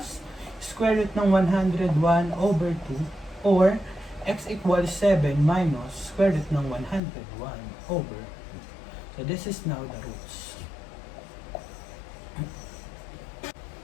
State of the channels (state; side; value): drops out; right; at 7.0 s